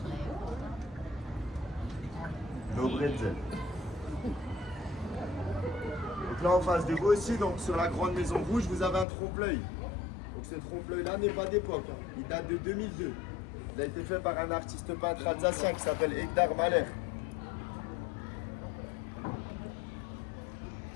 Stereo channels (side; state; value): right; drops out; at 9.1 s